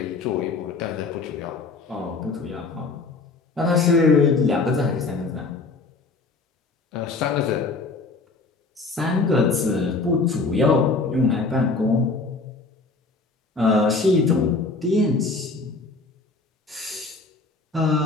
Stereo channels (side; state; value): right; quieter; 3.8 dB